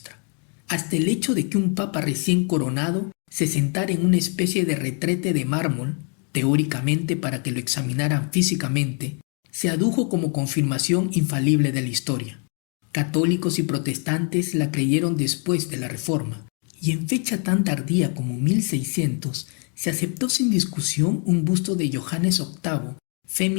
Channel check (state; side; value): quieter; right; 39.4 dB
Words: Hasta el hecho de que un papa recién coronado se sentara en una especie de retrete de mármol, teóricamente para que lo examinaran físicamente, se adujo como confirmación infalible de la historia. Católicos y protestantes la creyeron después de la Reforma, y en fecha tan tardía como 1600 se aceptó sin discusión un busto de Johannes VIII,